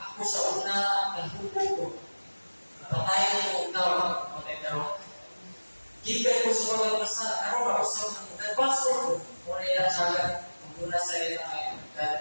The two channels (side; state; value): both; inverted; correlation -1.00